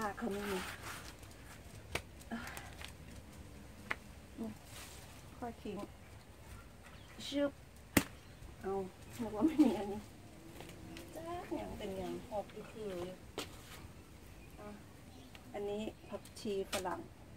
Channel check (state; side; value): identical; both; correlation 1.00